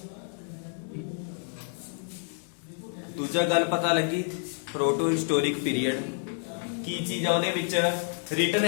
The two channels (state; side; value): silent; right; 59 dB below the other